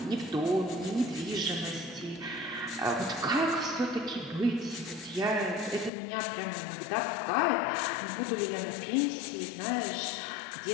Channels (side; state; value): right; drops out; at 5.9 s